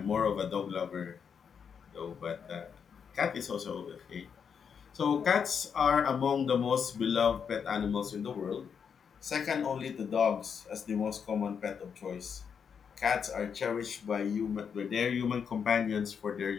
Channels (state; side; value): quieter; right; 6.9 dB